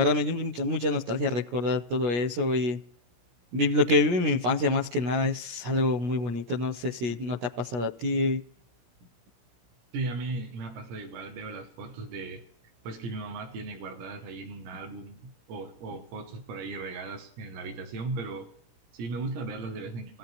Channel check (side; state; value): left; late; 17 ms